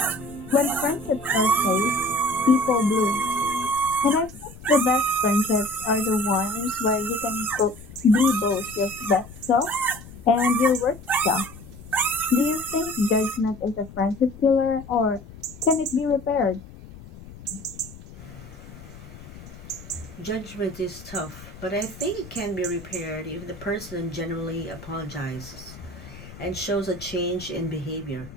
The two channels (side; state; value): left; noise; rumble, 17 dB below the sound